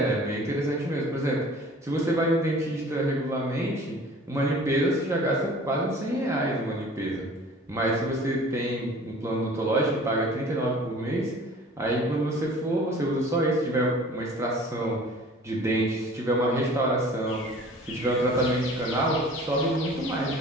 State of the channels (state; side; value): normal; both; correlation 0.46